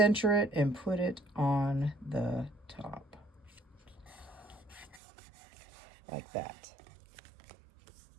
it and put it on the top. Like that.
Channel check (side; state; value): left; drops out; at 5.0 s